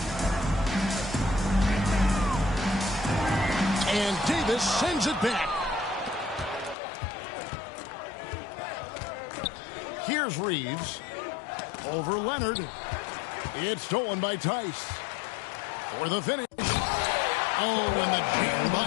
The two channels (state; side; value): drops out; right; at 6.8 s